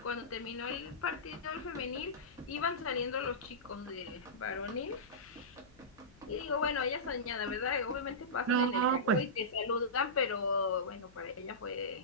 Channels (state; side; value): noise; left; hum, 26 dB below the sound